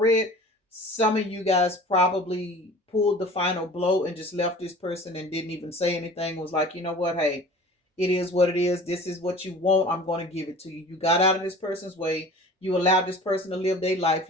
Some of you guys probably pulled the final blow and just left this person and didn't even say anything. Was like, you know what, hey, it is what it is. This is what you want. I'm going to give it to you. You got out of this person's way. You allowed this person to live their life.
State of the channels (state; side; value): normal; both; correlation 0.42